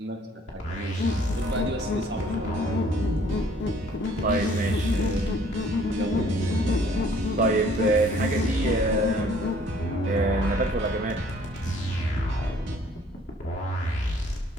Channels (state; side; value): normal; both; correlation 0.58